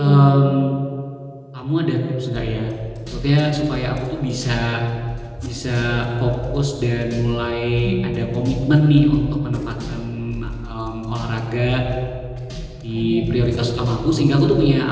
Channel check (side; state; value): both; identical; correlation 1.00